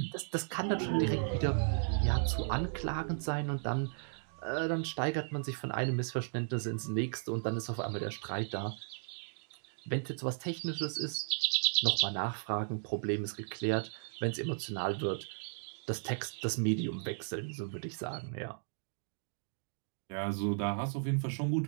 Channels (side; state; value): left; silent; digital silence